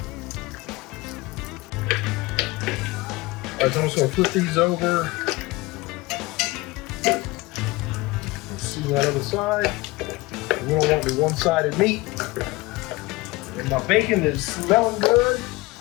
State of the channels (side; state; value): right; quieter; 22.0 dB